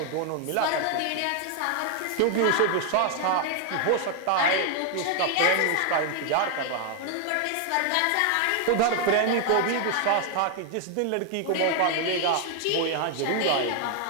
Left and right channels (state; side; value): different; both; correlation 0.00